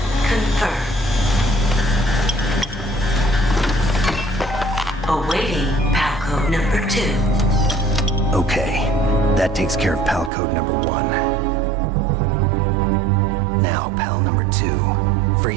confirmed. Awaiting PAL code number 2. Okay, that takes care of PAL code number 1. Now, PAL number 2.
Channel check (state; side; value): drops out; left; at 10.3 s